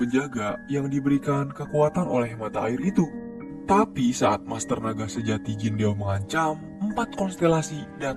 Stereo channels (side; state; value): both; identical; correlation 1.00